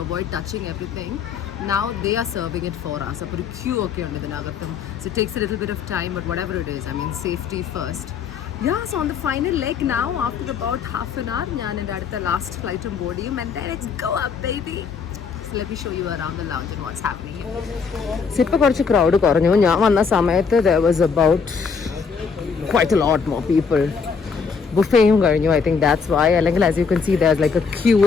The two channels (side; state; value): right; quieter; 5.7 dB